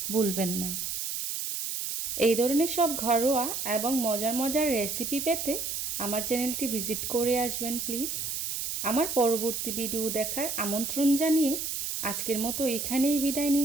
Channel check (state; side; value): noise; right; hiss, 3 dB below the sound